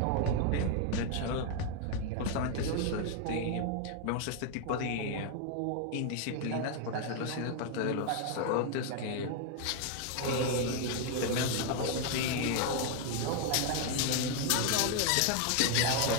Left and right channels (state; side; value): different; both; correlation 0.01